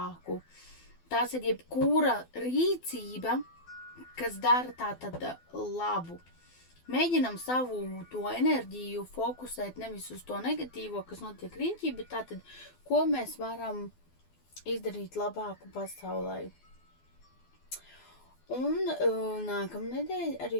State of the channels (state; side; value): late; right; 12 ms